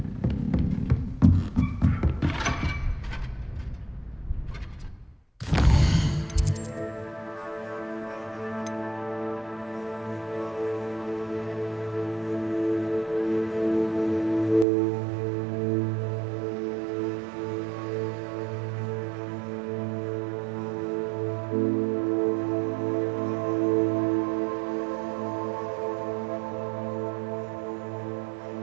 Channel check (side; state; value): left; drops out; at 14.7 s